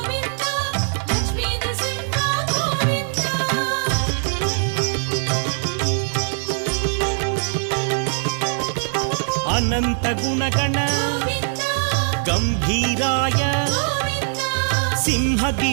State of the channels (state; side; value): silent; left; 65 dB below the other